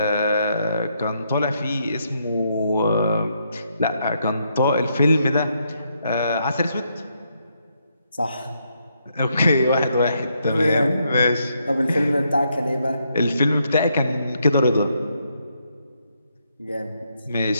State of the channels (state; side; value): inverted; both; correlation -0.77